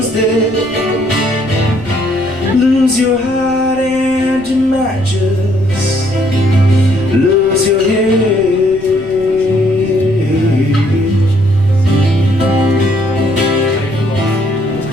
dead, lose your heart and you might just lose your head.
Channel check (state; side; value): noise; left; rumble, 21 dB below the sound